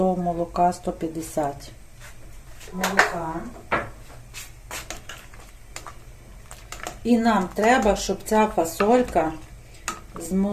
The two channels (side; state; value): both; identical; correlation 1.00